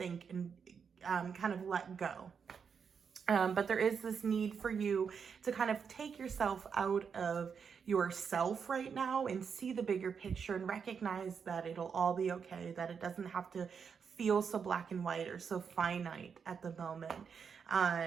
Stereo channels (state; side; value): quieter; left; 6.5 dB